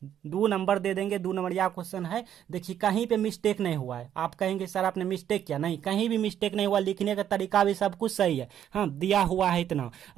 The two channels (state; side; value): quieter; left; 10.1 dB